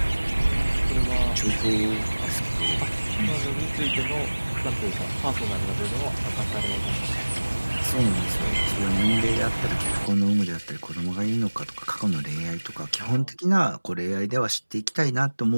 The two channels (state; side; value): inverted; both; correlation -1.00